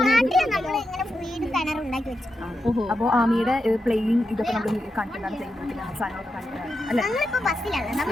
അപ്പോൾ ആമിയുടെ പ്ലേയിങ് ഇതൊക്കെ നമ്മൾ കണ്ടിട്ടാണ് ചെയ്യുന്നത്. സാധനങ്ങളൊക്കെ കണ്ടിട്ടാണ് അല്ലേ?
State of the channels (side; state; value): both; normal; correlation 0.87